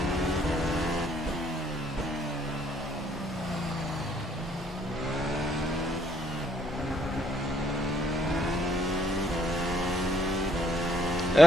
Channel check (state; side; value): normal; both; correlation 0.70